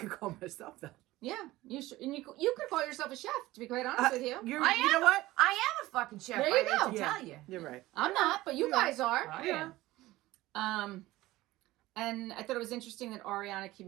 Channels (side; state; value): left; quieter; 17.7 dB